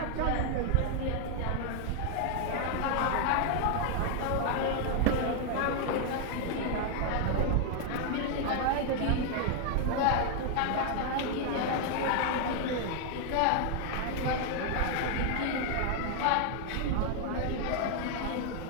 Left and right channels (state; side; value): different; both; correlation 0.00